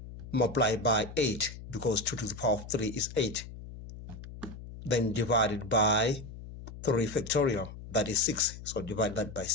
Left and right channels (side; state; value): left; noise; hum, 13 dB below the sound